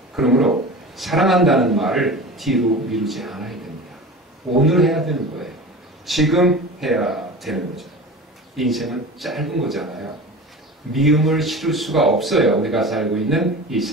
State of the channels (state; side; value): normal; both; correlation 0.34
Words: 그러므로 사랑한다는 말을 뒤로 미루지 않아야 됩니다. 오늘 해야 되는 거예요. 지금 해야 되는 거죠. 인생은 짧은 거잖아요. 미움을 실을 수가 없어요. 우리가 살고 있는 이